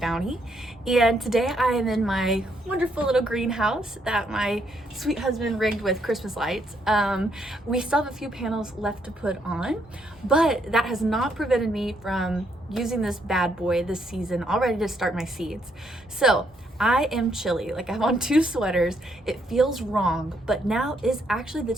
and today I am in my wonderful little greenhouse that my sweet husband rigged with Christmas lights. We still have a few panels left to put on, but that has not prevented me from using this bad boy this season, all ready to start my seeds. So I am chilly, like I'm on 2 sweaters. It feels wrong, but now is actually the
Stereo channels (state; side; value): normal; both; correlation 0.73